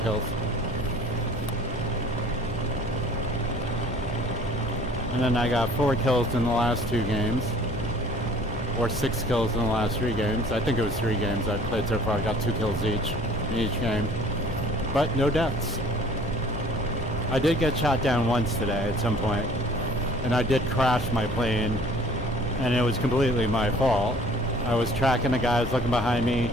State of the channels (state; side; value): normal; both; correlation 0.52